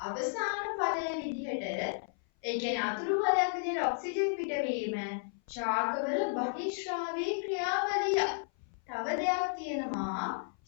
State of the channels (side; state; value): right; silent; 56 dB below the other